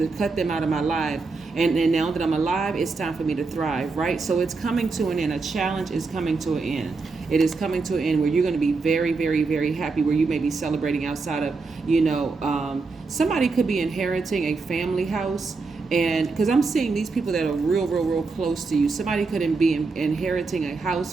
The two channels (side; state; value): left; quieter; 4.2 dB